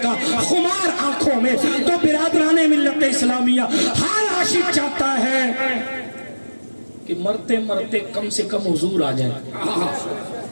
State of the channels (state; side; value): inverted; both; correlation -1.00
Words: گا خمار آنکھوں میں۔ تو برادران ملت اسلامیہ ہر عاشق چاہتا ہے کہ مرتے مرتے کم سے کم حضور آ جائے،